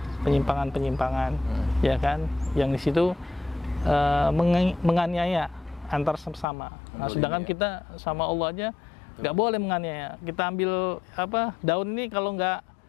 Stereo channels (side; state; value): right; drops out; at 6.5 s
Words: penyimpangan-penyimpangan, ya kan? Yang di situ menganiaya antar sesama. Nah, sedangkan kita sama Allah aja nggak boleh menganiaya. Kita ambil daun ini kalau nggak